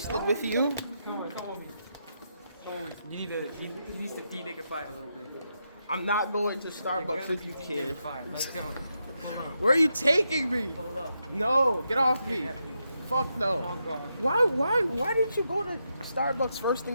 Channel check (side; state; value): both; inverted; correlation -0.84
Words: with you. Come with me. You need to de-nigify a little bit. I'm not going to Starbucks with you, kid. Let's go. Where are you taking me? Hold up. No, get off me. Fuck no. Why didn't you go to Starbucks first